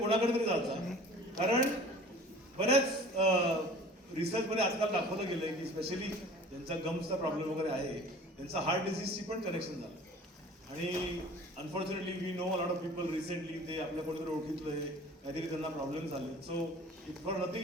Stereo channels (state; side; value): normal; both; correlation 0.45